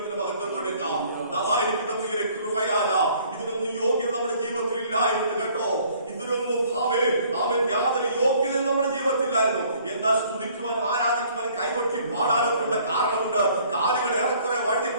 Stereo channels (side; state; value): both; inverted; correlation -0.58